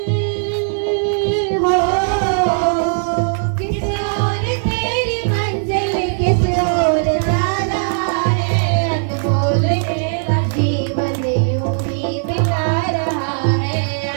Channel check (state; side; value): silent; left; digital silence